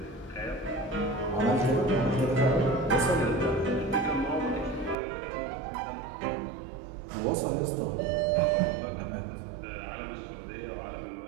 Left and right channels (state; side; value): drops out; left; at 5.0 s